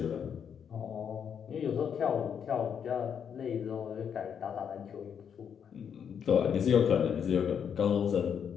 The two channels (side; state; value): right; quieter; 7.7 dB